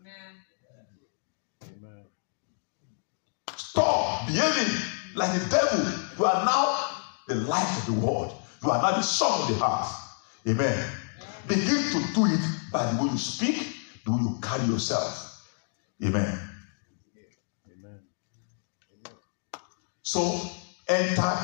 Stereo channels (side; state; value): right; silent; 59 dB below the other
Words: Amen. Amen. Stop behaving like the devil. You are now the light of the world. You are now the son of the house. Amen. Begin to do it by the way you speak, the way you carry yourself. Amen. Amen. So enter